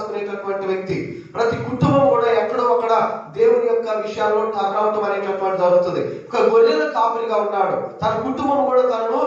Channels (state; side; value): identical; both; correlation 1.00